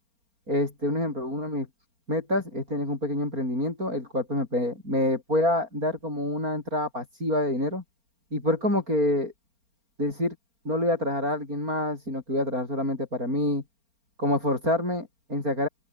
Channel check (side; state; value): left; late; 4.3 ms